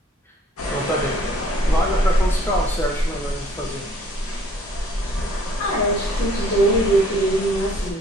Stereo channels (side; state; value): both; normal; correlation 0.59